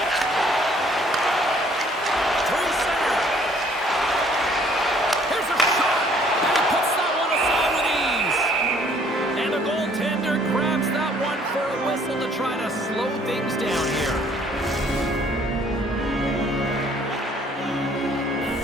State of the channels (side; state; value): both; normal; correlation 0.60